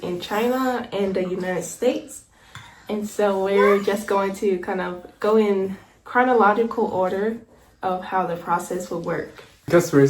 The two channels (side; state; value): both; identical; correlation 1.00